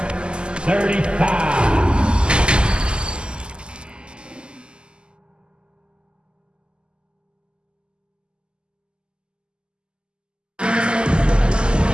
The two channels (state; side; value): late; left; 0.049 ms